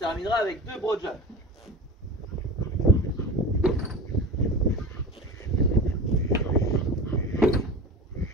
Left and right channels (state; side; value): normal; both; correlation 0.32